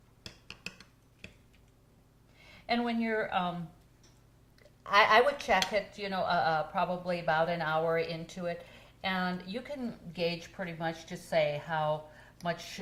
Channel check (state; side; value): identical; both; correlation 1.00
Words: And when you're, I would check it, probably about an hour into it, and you can gauge pretty much, just say how much